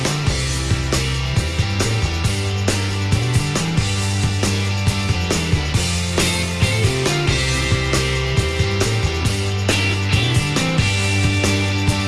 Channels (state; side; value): identical; both; correlation 1.00